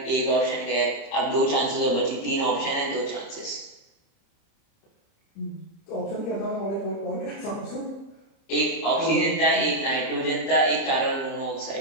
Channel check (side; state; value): right; late; 30 ms